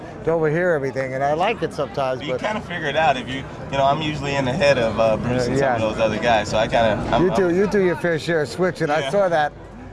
to overhear everything, and I like it sometimes. But you kind of figure it out if you know. I'm usually in the head of Bruce and some of those other guys, so I kind of. You do your fair share of switching. I saw that.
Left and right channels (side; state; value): both; identical; correlation 1.00